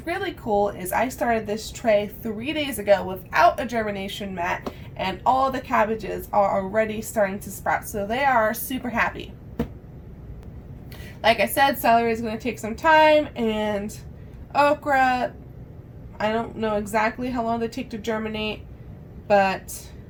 really cool is I started this tray 3 days ago without a germination mat, and all the cabbages are already starting to sprout, so they are super happy. Like I said, celery is going to take some time, and okra, I don't know exactly how long they take to germinate, but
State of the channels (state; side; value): identical; both; correlation 1.00